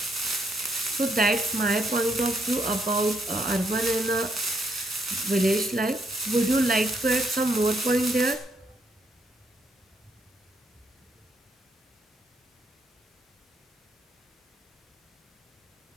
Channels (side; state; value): both; normal; correlation 0.74